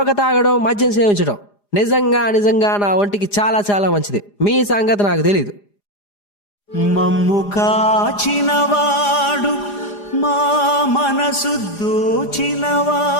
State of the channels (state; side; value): late; right; 4.9 ms